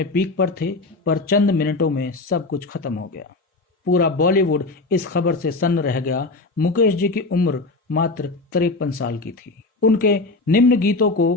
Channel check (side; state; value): right; quieter; 3.4 dB